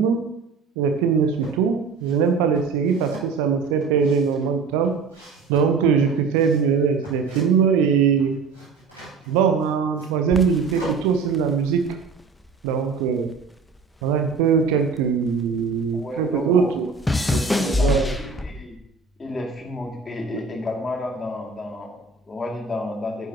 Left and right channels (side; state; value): left; quieter; 5.0 dB